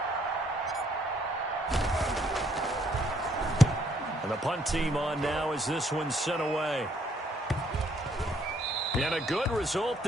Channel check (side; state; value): both; normal; correlation 0.68